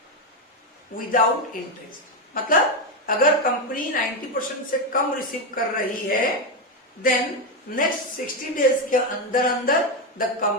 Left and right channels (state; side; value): normal; both; correlation 0.09